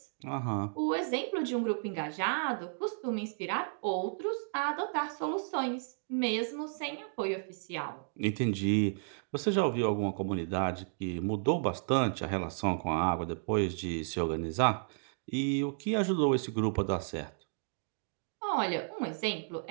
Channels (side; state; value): left; silent; digital silence